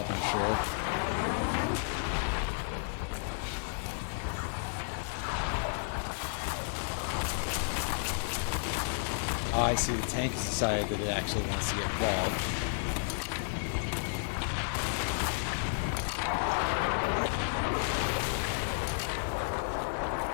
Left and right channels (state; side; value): silent; right; 56 dB below the other